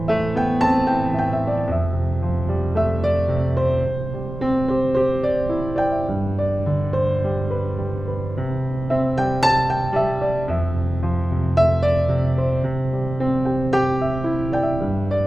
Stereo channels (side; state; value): right; noise; rumble, 9 dB below the sound